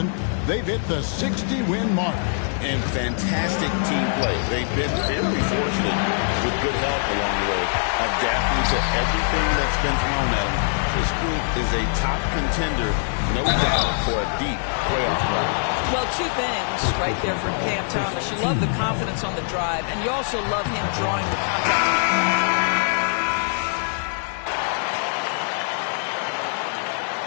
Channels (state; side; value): silent; right; 63 dB below the other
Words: They've hit the 60-win mark. And fantastic team play. They've been very fortunate with good help along the way, adapting to everything that's been thrown at them. This group is a top contender, no doubt, for a deep playoff run. Well, 2 things right there for Cam Thomas. You love the confidence on the drive, and you also love him drawing the contact.